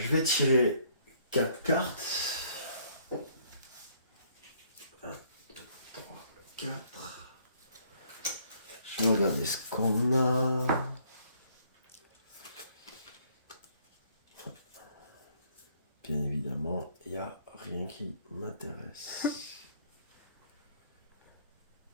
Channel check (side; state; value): both; inverted; correlation -0.65